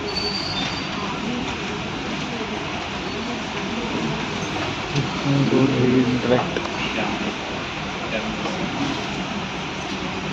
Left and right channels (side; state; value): both; identical; correlation 1.00